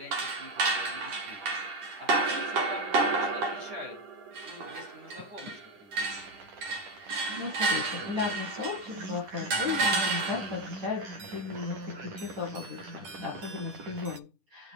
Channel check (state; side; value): late; left; 10 ms